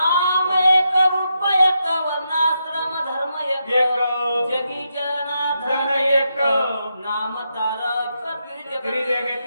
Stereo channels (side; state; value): both; inverted; correlation -0.83